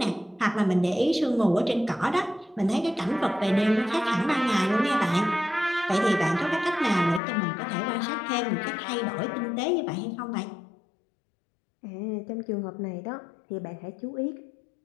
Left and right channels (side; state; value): right; drops out; at 7.2 s